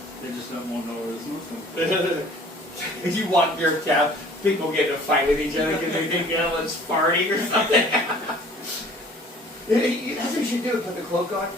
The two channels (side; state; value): both; normal; correlation 0.51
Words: They just don't want to know where this moves. If you walk your cab, people get in a fight with each other because they think everyone's farting or something. That's what you should do. Put the cloak on